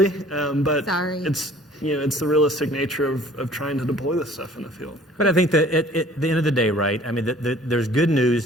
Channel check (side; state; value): both; normal; correlation 0.52